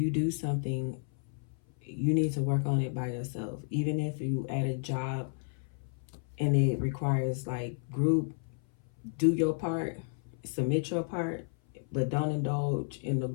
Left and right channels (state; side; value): silent; right; 56 dB below the other